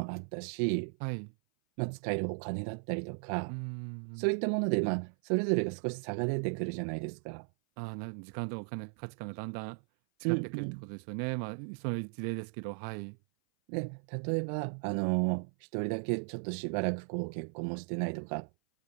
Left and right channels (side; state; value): left; silent; 54 dB below the other